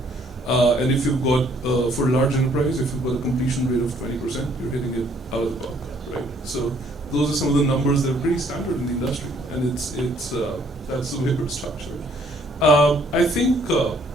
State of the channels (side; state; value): both; normal; correlation 0.63